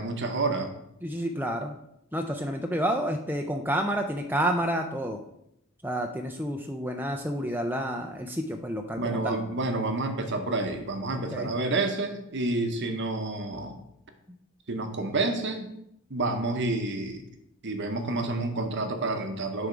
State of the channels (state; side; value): normal; both; correlation 0.34